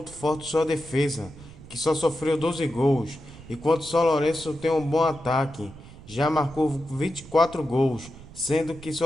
forte sua defesa, que só sofreu 12 gols, enquanto São Lourenço tem um bom ataque, já marcou 24 gols, sendo que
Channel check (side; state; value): right; noise; rumble, 18 dB below the sound